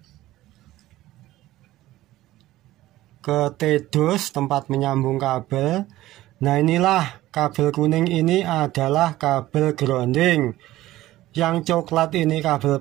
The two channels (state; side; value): quieter; left; 15.9 dB